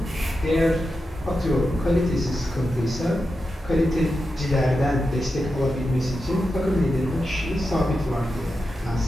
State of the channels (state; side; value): normal; both; correlation 0.89